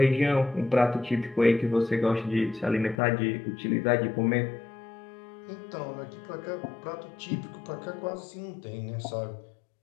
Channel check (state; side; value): drops out; right; at 3.0 s